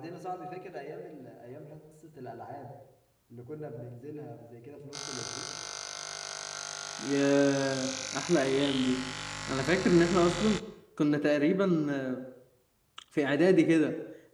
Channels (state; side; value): identical; both; correlation 1.00